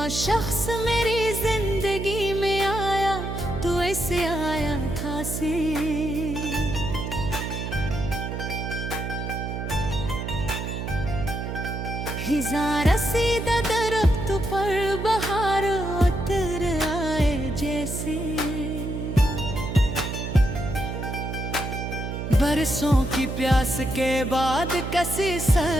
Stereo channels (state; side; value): noise; right; hum, 5 dB below the sound